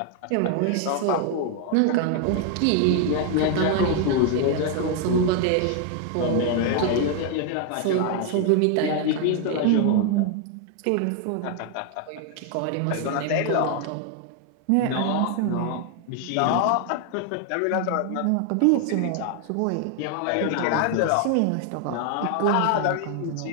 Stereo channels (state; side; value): different; both; correlation 0.00